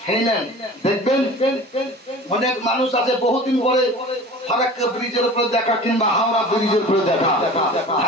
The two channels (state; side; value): normal; both; correlation 0.40